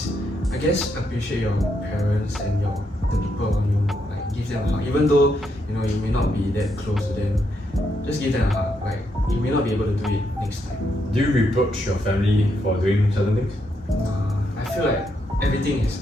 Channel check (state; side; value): normal; both; correlation 0.79